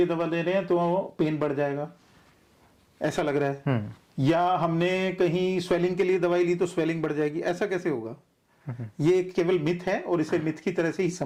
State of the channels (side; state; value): both; identical; correlation 1.00